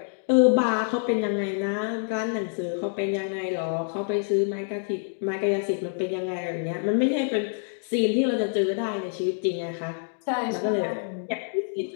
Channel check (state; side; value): silent; right; digital silence